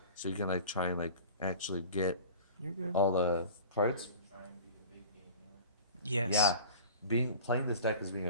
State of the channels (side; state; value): both; inverted; correlation -0.39